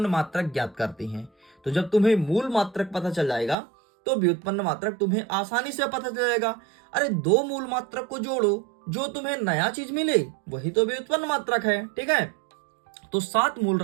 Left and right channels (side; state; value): left; drops out; at 3.6 s